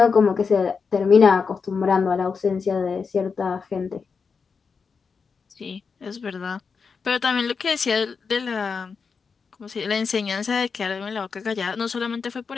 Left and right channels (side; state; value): right; quieter; 5.4 dB